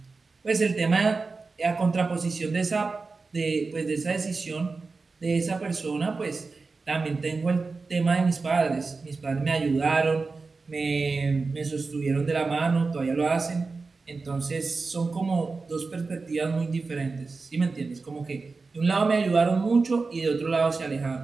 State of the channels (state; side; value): quieter; left; 4.1 dB